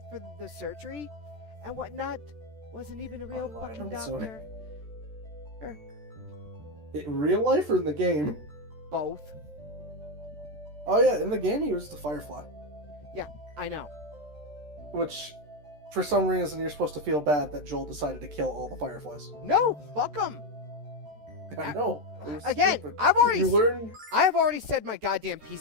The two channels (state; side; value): late; left; 13 ms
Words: for the surgery and whatnot wasn't even a real fucking doctor. In real life or in the game? Both. Oh yeah, in the game he was the Firefly. Yeah, I know. Which, for some reason, you're supposed to feel bad that Joel decided to kill all the Fireflies. No, fuck them. I know. Again, Stupid. I have already said my goddamn